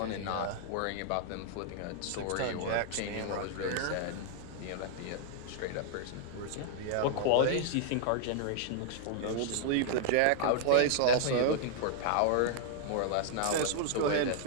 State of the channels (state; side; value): different; both; correlation -0.01